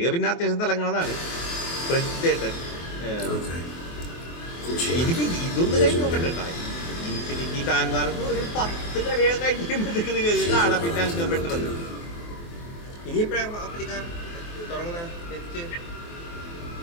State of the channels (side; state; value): right; late; 24 ms